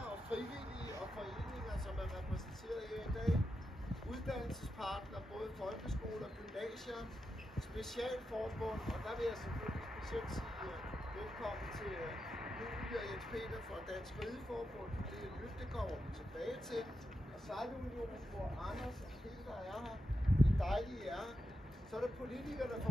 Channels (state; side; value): normal; both; correlation 0.88